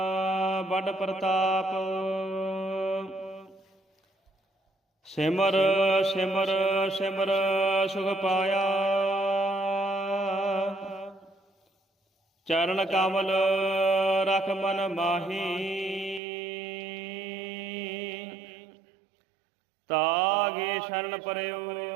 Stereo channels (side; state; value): left; drops out; at 16.2 s